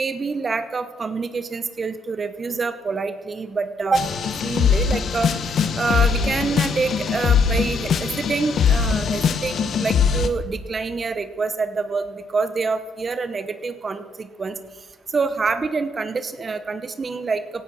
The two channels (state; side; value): normal; both; correlation 0.72